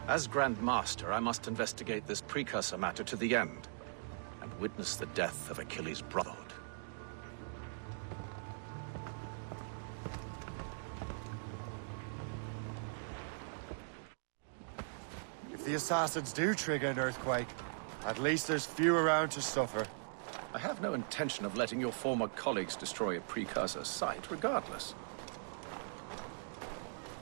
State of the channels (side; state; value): left; silent; digital silence